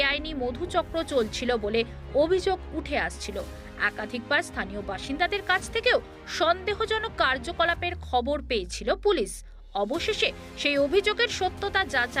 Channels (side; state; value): both; identical; correlation 1.00